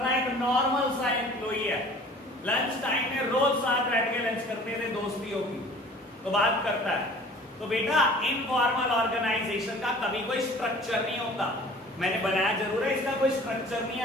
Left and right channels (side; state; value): both; normal; correlation 0.47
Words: है, एक नॉर्मल सा एम्प्लॉई है, लंच टाइम में रोज साथ बैठ के लंच करते थे, दोस्ती होगी तो बात करता है, तो बेटा इनफॉर्मल ऑर्गेनाइजेशन का कभी कोई स्ट्रक्चर नहीं होता, मैंने बनाया जरूर है, इसका कोई स्ट्रक्चर नहीं